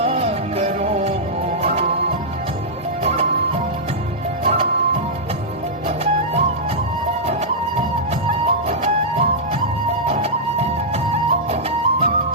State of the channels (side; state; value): both; normal; correlation -0.11